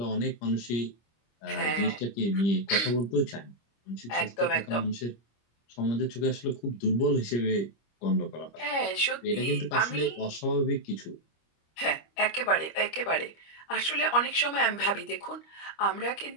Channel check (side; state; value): right; late; 25 ms